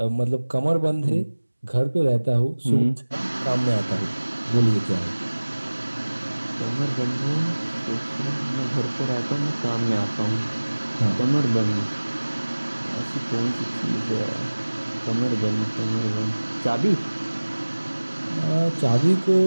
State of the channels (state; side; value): inverted; both; correlation -1.00